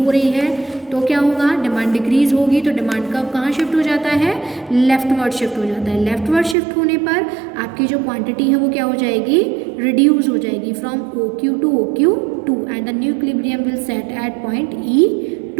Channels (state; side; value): drops out; left; at 6.6 s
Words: रही है तो क्या होगा, डिमांड डिक्रीज होगी तो डिमांड कब कहाँ शिफ्ट हो जाता है, लेफ्टवर्ड शिफ्ट हो जाता है. लेफ्टवर्ड शिफ्ट होने पर आपकी जो क्वांटिटी है वो क्या हो जाएगी, रिड्यूस हो जाएगी from OQ to OQ2 and the new equilibrium will set at point